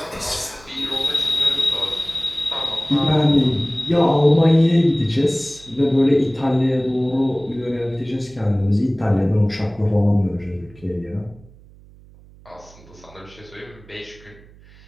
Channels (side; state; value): right; noise; hum, 24 dB below the sound